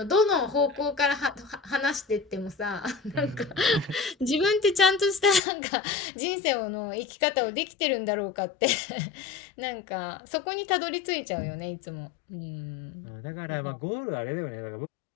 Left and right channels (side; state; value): right; drops out; at 5.4 s